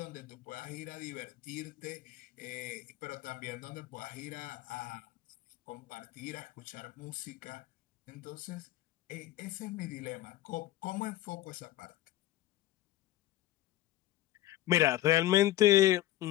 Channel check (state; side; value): quieter; right; 14.8 dB